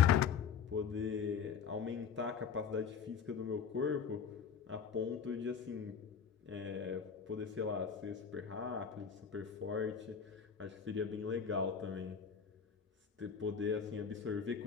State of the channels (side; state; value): right; quieter; 6.9 dB